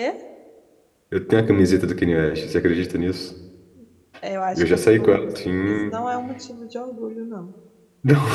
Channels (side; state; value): both; identical; correlation 1.00